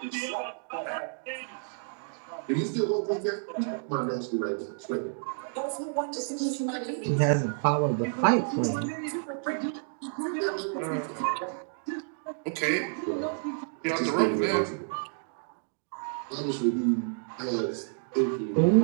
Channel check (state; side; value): silent; left; digital silence